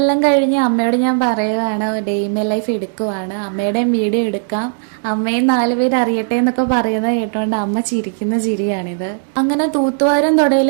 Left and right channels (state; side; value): silent; left; digital silence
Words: കഴിഞ്ഞ് അമ്മയോട് ഞാൻ പറയുകയാണ് ഡേ മൈ ലൈഫ് എടുക്കുവാണ്, അമ്മയുടെയും വീഡിയോ എടുക്കാം, അമ്മയും 4 പേര് അറിയട്ടെ എന്നൊക്കെ പറയുന്നത് കേട്ടോണ്ട് അമ്മ ചിരിക്കുന്ന ചിരിയാണിത്. അങ്ങനെ തൂത്തുവാരും